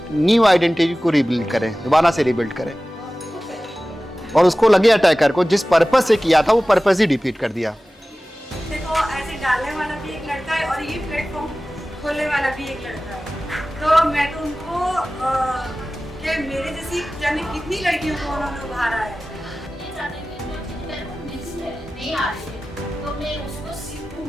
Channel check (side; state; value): both; normal; correlation 0.96